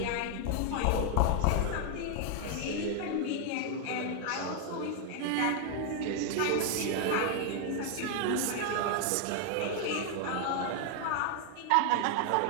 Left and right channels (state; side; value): different; both; correlation 0.00